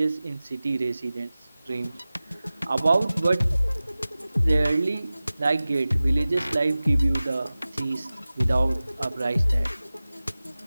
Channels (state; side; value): inverted; both; correlation -0.97